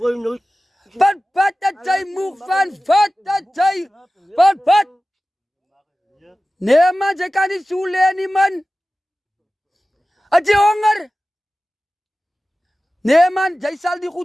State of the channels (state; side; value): normal; both; correlation 0.96